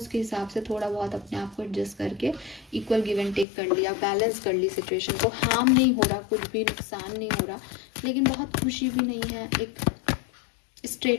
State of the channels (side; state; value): right; drops out; at 3.5 s